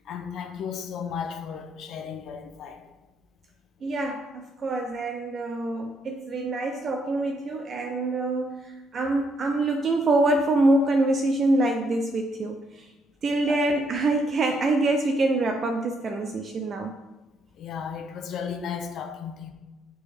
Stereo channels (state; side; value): normal; both; correlation 0.74